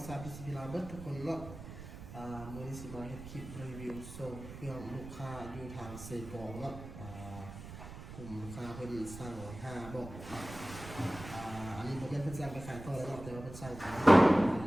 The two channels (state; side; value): noise; right; rumble, 12 dB below the sound